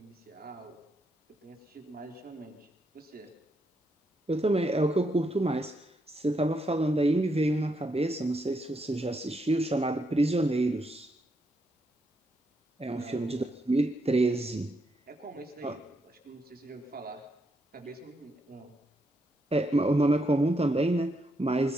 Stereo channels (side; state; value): both; normal; correlation 0.79